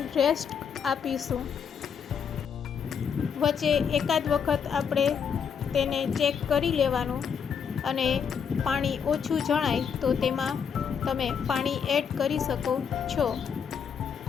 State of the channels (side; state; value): right; quieter; 7.0 dB